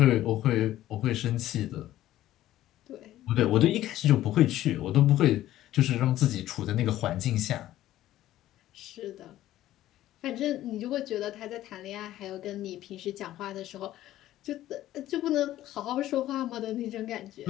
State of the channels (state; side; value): quieter; right; 14.0 dB